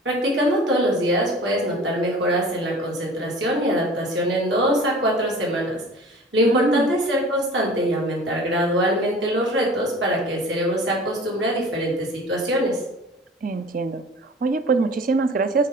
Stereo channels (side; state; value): both; normal; correlation 0.43